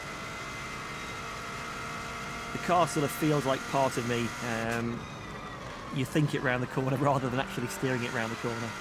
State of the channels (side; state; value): both; identical; correlation 1.00